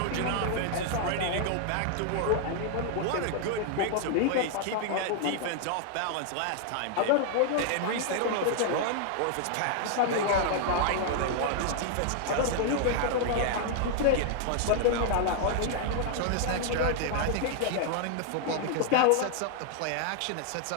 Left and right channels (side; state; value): both; different; correlation 0.00